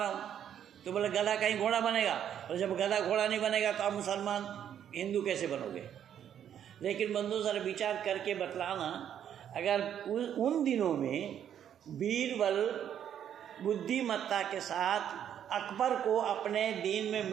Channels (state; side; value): quieter; left; 9.6 dB